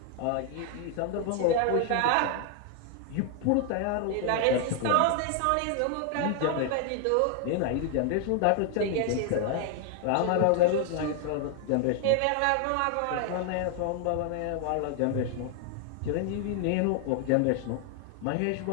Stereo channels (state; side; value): different; both; correlation 0.00